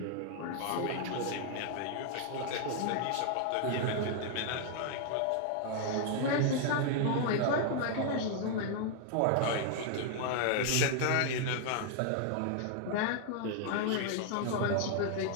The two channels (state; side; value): different; both; correlation 0.00